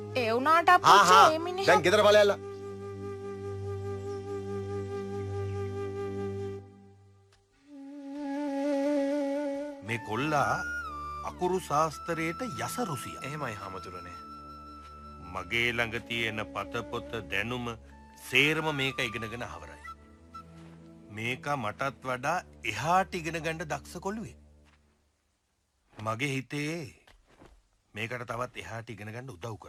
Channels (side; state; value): both; identical; correlation 1.00